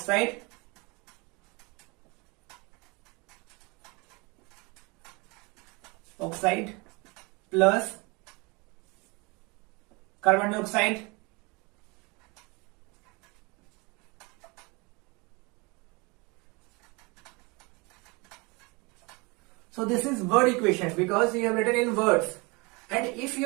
Plus carbon dioxide so this is word equation because you have written in words, and if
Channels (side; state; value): left; quieter; 27.5 dB